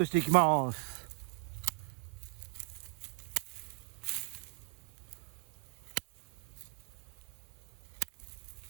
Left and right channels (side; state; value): left; quieter; 36.6 dB